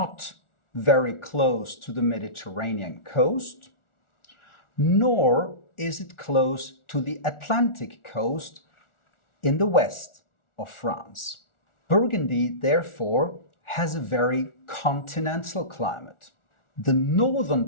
very close to the Mediterranean coast, nor is it close to the Atlantic coast in the west of France. Burgundy, therefore, has a very continental climate. The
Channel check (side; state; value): right; late; 1.4 ms